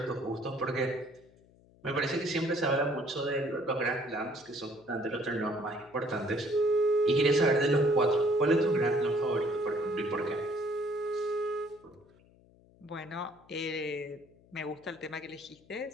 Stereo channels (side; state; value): left; noise; hum, 28 dB below the sound